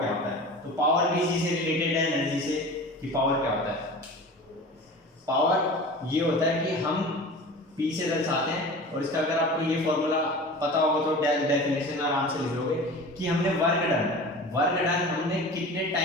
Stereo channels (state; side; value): normal; both; correlation 0.36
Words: होता है। तो पावर भी इसी से रिलेटेड है एनर्जी से, कि पावर क्या होता है। पावर ये होता है कि हम P से दर्शाते हैं, और इसका अगर आपको ये फॉर्मूला पता होगा तो डेफिनेशन आराम से लिख लोगे कि हमने वर्क डन हमने कितने